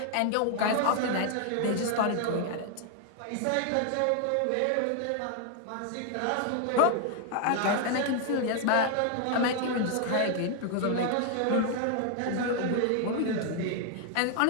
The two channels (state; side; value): different; both; correlation 0.00